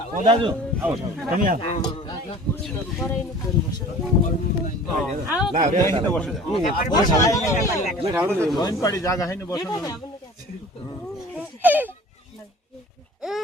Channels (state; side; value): normal; both; correlation 0.44